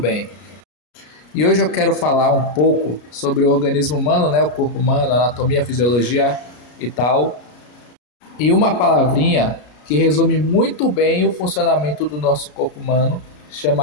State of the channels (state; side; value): late; right; 33 ms